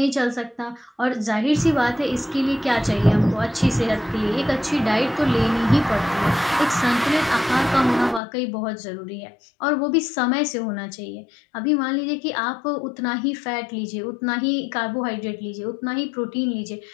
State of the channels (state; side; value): drops out; right; at 8.2 s